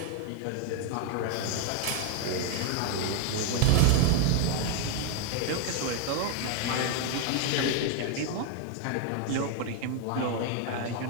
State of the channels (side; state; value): both; different; correlation 0.00